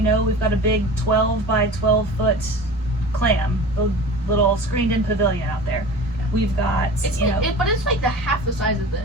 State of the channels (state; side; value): normal; both; correlation 0.37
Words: got a big 12 by 12 foot clam, the little screened in pavilion out there. We've got, it's but it's like the half the size of